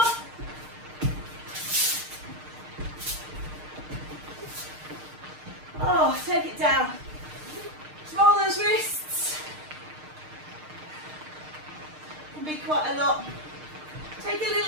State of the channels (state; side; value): late; left; 6.5 ms